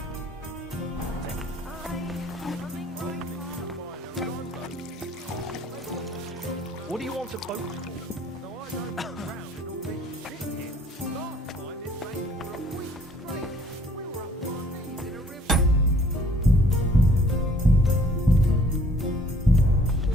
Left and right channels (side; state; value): both; normal; correlation 0.57